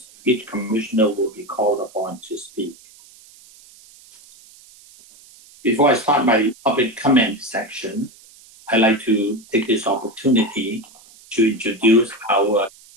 each commissioner will be called upon to speak. Before I start my public comment section, I'd like to take this opportunity to introduce our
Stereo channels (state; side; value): noise; right; hiss, 24 dB below the sound